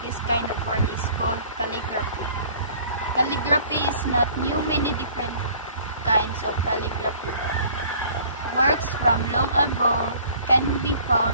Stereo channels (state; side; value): inverted; both; correlation -0.51